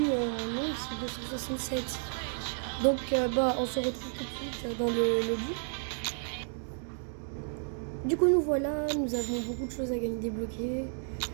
non, c'est 267. Donc on se retrouve tout de suite dans le but. Du coup nous voilà, nous avons beaucoup de choses à gagner débloquer.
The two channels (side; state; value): left; silent; 56 dB below the other